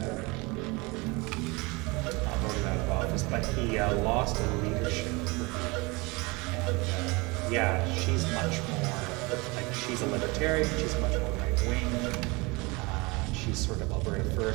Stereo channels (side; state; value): left; quieter; 25.9 dB